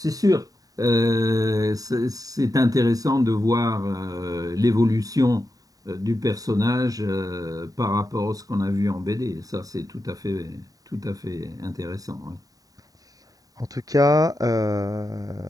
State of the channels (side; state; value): left; late; 0.18 ms